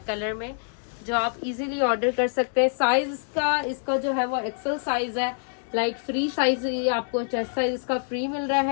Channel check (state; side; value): silent; right; digital silence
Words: कलर में जो आप इजीली ऑर्डर कर सकते हैं। साइज का इसका जो है वो एक्सेल साइज है, लाइक फ्री साइज ये आपको चेस्ट साइज इसका फ्री मिल रहा